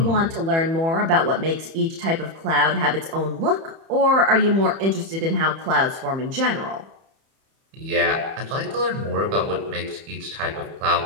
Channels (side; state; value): left; late; 31 ms